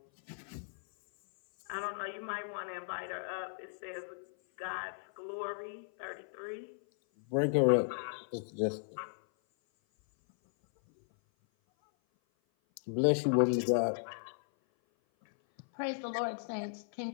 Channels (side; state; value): right; silent; 54 dB below the other